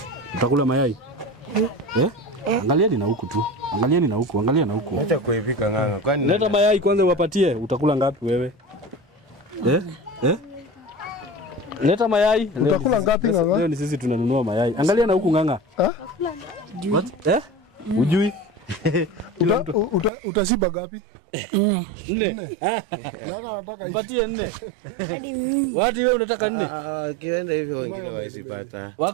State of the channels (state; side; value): drops out; left; at 20.1 s